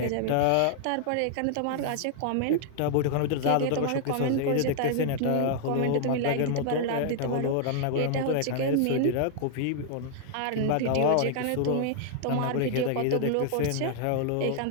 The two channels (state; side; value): different; both; correlation 0.00